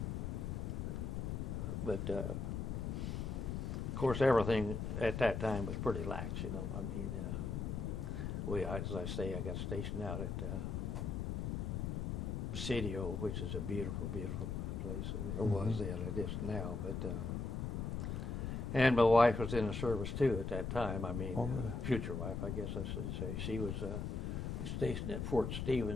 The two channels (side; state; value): left; noise; rumble, 2 dB below the sound